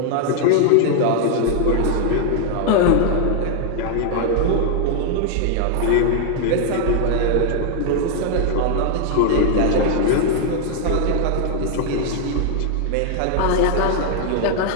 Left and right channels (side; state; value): both; different; correlation 0.00